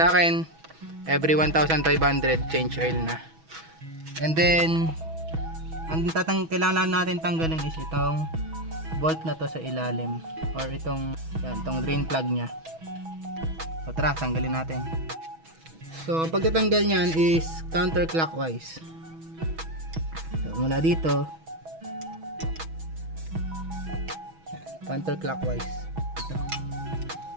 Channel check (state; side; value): late; left; 6.2 ms